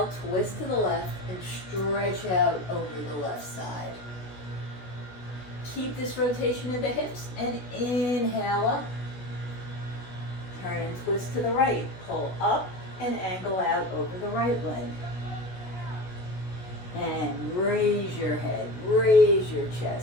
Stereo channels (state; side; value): late; right; 16 ms